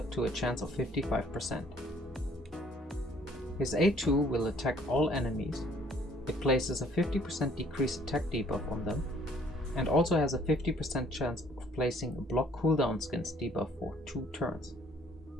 to a chance of 55%. His A2 will attack all enemies. It places a 50% decreased attack debuff on them, and also has a 50% chance of placing a block cooldown skins debuff for 2 turns.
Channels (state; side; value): normal; both; correlation 0.60